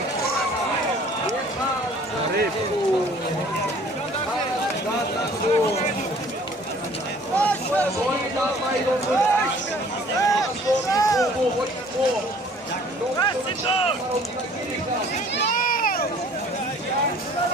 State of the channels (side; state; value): both; normal; correlation 0.53